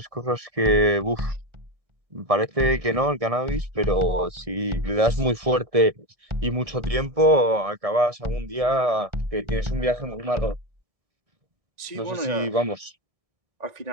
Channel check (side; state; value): left; late; 1.6 ms